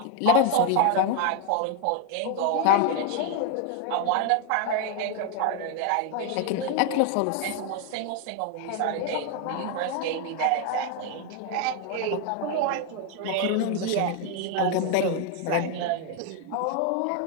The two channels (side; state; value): both; different; correlation 0.01